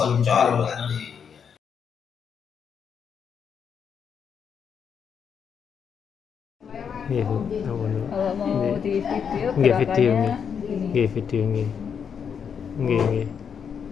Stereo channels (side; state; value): right; quieter; 7.1 dB